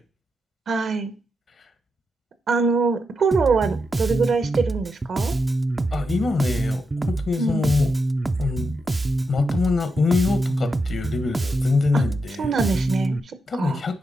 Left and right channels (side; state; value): both; normal; correlation 0.85